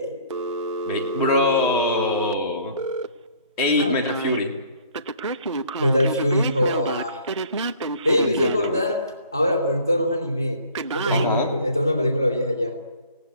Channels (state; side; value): inverted; both; correlation -0.54